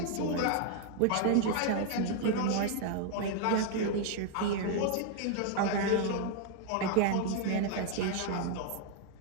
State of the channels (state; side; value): different; both; correlation 0.00